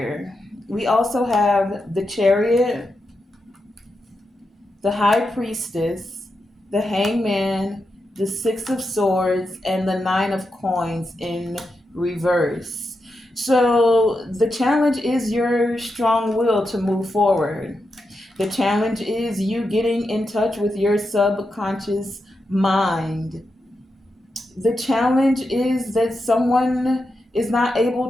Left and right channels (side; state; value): both; normal; correlation 0.87